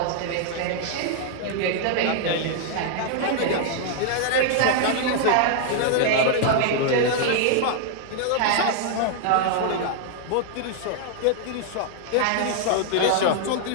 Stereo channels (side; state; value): both; different; correlation -0.01